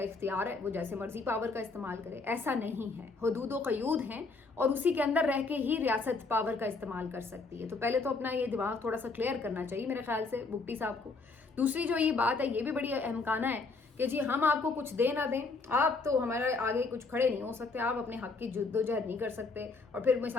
इख्तियार है, वो जैसे मर्जी पावर का इस्तेमाल करे। ऐसा नहीं है, हदूद व क़यूद हैं और उसी के अंदर रह के ही रियासत पावर का इस्तेमाल कर सकती है। तो पहले तो अपना ये दिमाग थोड़ा सा क्लियर करना चाहिए मेरे ख्याल से बुट्टी साहब को। दूसरी जो ये बात है ये भी बड़ी अहमकाना है कि जी हम आपको कुछ दे ना दें, आप तो हमारे आगे कुछ खड़े नहीं हो सकते, आप अपने हक की जद्दोजहद नहीं कर सकते। और फिर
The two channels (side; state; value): right; quieter; 4.0 dB